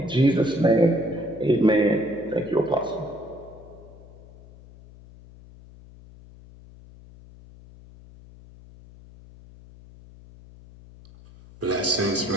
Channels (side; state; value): left; noise; hum, 21 dB below the sound